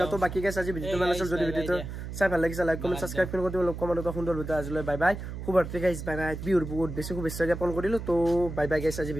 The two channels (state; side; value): noise; right; hum, 8 dB below the sound